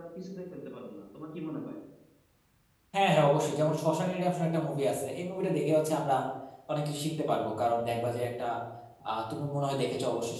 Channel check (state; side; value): identical; both; correlation 1.00